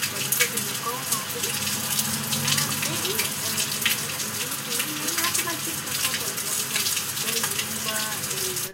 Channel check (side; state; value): both; identical; correlation 1.00